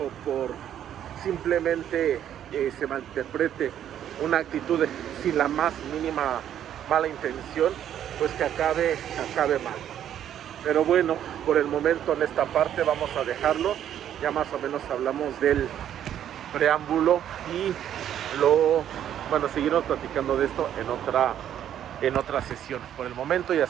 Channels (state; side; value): quieter; left; 10.4 dB